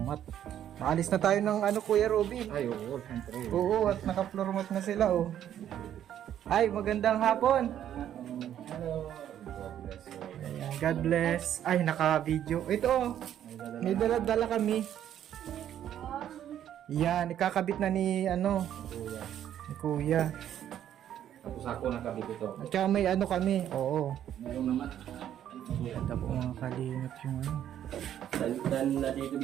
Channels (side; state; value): left; quieter; 10.6 dB